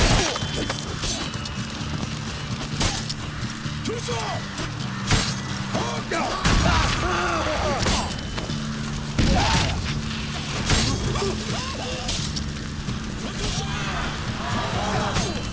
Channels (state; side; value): identical; both; correlation 1.00